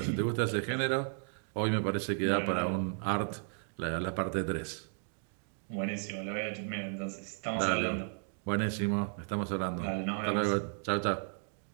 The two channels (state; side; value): silent; left; 55 dB below the other